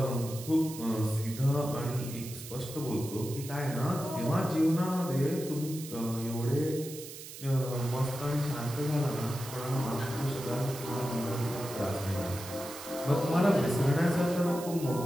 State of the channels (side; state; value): right; noise; hiss, 12 dB below the sound